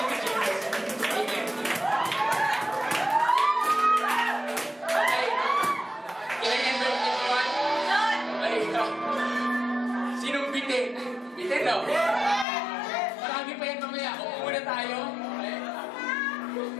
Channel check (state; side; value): drops out; right; at 12.5 s